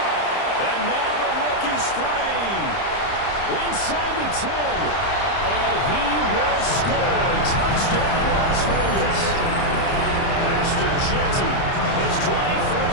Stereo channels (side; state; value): right; late; 30 ms